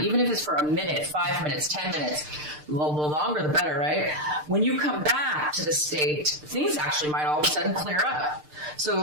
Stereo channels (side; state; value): left; late; 6.6 ms